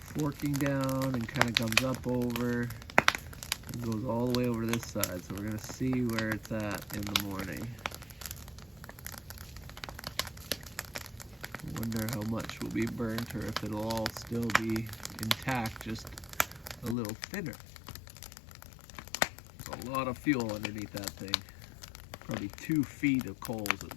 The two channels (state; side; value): drops out; right; at 16.9 s